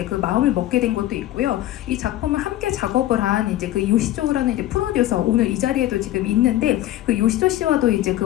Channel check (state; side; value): quieter; right; 14.3 dB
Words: 그 마음을 먹게 된 것도 있고요. 이 작품을 함께 작업을 한 이제 그 요시조라는 이제 프로듀서 오늘 이 자리에도 지금 있는데 그 요시조 씨와도 이제